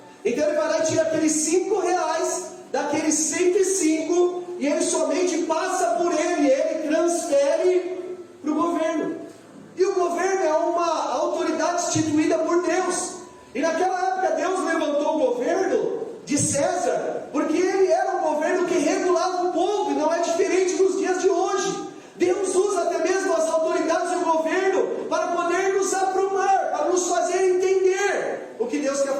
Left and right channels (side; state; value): both; identical; correlation 1.00